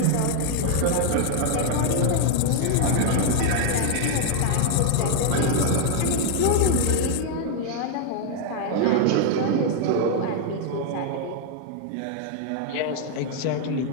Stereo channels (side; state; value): both; different; correlation 0.00